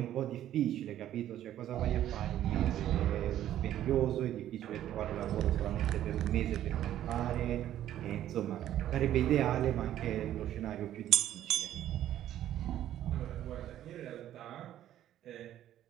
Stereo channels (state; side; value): quieter; left; 12.0 dB